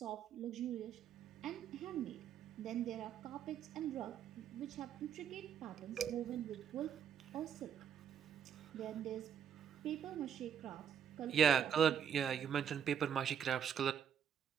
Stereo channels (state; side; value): quieter; left; 8.4 dB